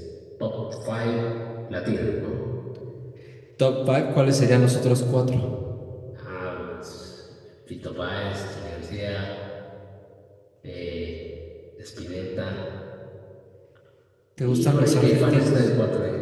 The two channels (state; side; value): identical; both; correlation 1.00